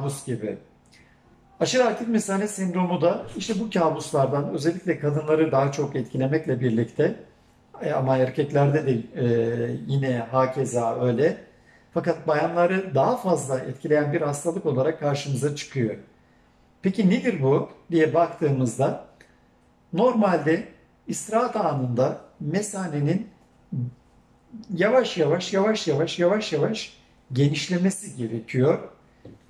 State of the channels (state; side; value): identical; both; correlation 1.00